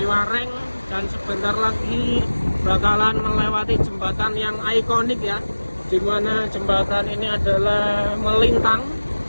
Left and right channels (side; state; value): both; inverted; correlation -1.00